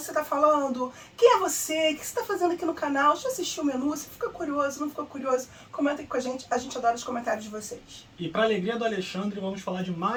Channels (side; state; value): both; identical; correlation 1.00